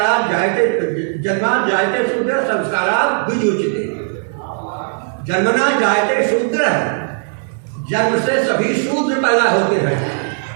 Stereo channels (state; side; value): silent; left; 68 dB below the other